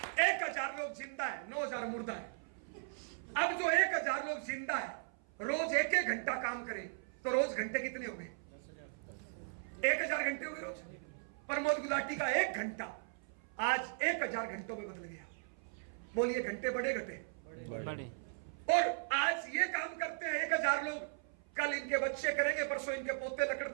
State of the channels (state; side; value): silent; left; 53 dB below the other